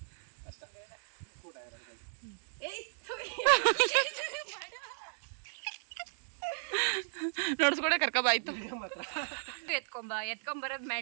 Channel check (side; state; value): left; silent; digital silence